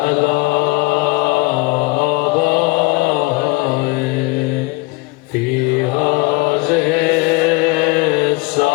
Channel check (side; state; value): right; quieter; 23.6 dB